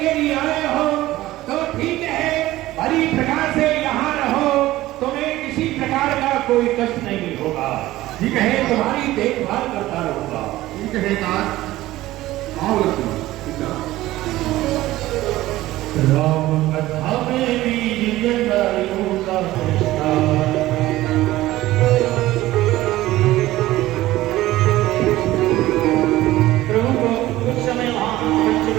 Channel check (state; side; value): quieter; left; 16.4 dB